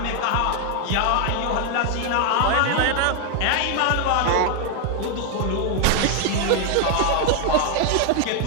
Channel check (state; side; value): different; both; correlation 0.00